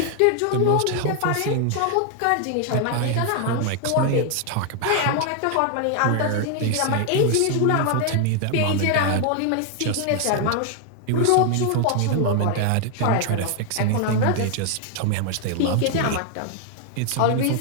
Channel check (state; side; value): different; both; correlation 0.00